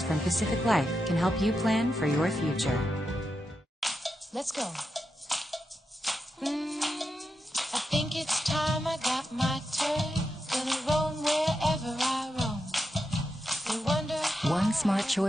from Pacific Life can help you plan for your future." Let's go. I think it's time I got my turn. Gonna roam wherever I roam. They wonder how one smart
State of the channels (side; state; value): both; normal; correlation 0.87